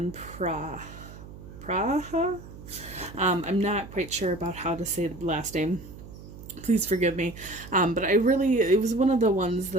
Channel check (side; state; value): right; noise; hum, 15 dB below the sound